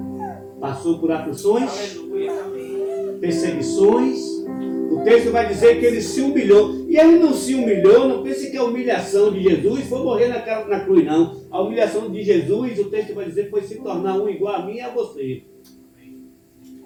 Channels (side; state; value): both; identical; correlation 1.00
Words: passou por aflições, perseguições. O texto vai dizer que ele se humilhou. E ele não se humilhou, não pense que a humilhação de Jesus foi morrer na cruz, não. A humilhação de Jesus, o texto vai dizer, foi se tornar um igual a mim e a você.